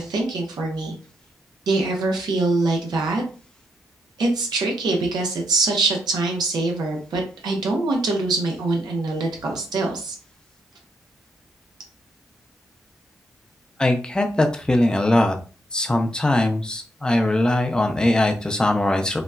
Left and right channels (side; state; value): both; normal; correlation 0.79